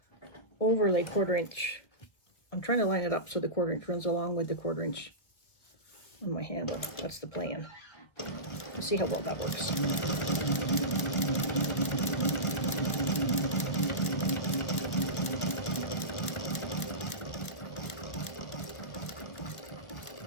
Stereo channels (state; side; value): late; right; 1.2 ms